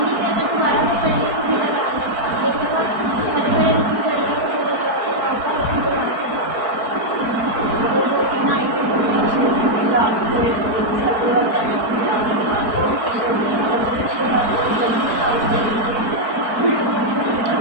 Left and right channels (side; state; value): left; late; 4.5 ms